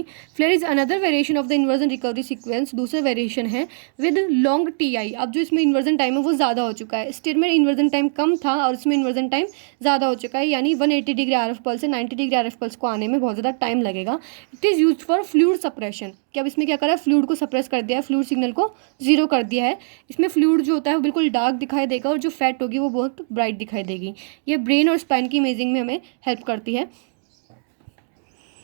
FLAIR is another variation of the inversion recovery sequence, दूसरा वेरिएशन है विद लॉन्ग टी आई। अब जो इसमें इन्वर्जन टाइम है वो ज़्यादा हो चुका है, स्टेट में इन्वर्जन टाइम कम था और इसमें इन्वर्जन टाइम ज़्यादा हो चुका है, यानी 180 डिग्री आर एफ पल्स से 90 डिग्री आर एफ पल्स को आने में बहुत ज़्यादा टाइम लगेगा। It is use for fluid suppression, कि अब इसमें क्या करा है, फ्लूइड को सप्रेस कर दिया है, फ्लूइड सिग्नल को जीरो कर दिया है। इसमें फ्लूइड जो होता है वो बिल्कुल डार्क दिखाई देगा और जो फैट होगी वो बहुत ब्राइट दिखाई देगी। ये ब्रेन और स्पाइन की इमेजिंग में हमें हेल्प करती है।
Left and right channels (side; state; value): left; silent; digital silence